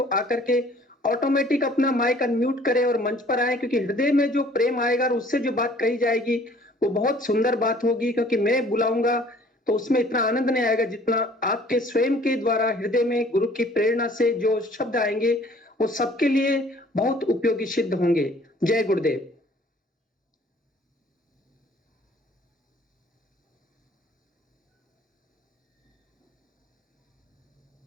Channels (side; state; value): both; normal; correlation 0.55